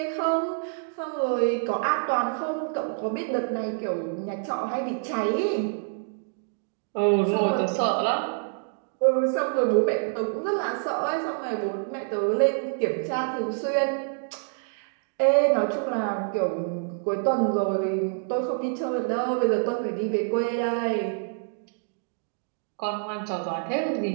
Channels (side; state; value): left; silent; digital silence